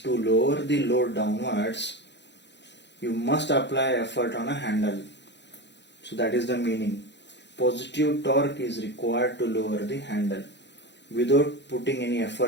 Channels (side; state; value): right; late; 0.51 ms